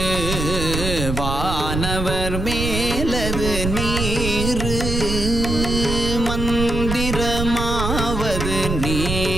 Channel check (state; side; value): noise; right; rumble, 3 dB below the sound